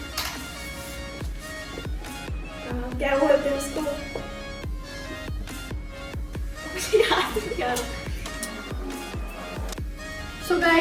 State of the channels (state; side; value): identical; both; correlation 1.00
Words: क्या बोलते हैं उसको? मुझे याद नहीं आ रहा। सो